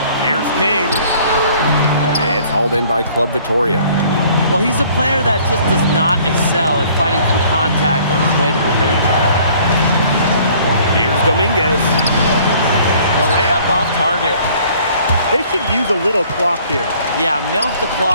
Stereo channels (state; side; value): inverted; both; correlation -0.56